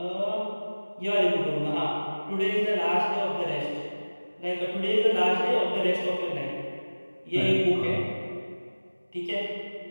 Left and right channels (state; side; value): inverted; both; correlation -1.00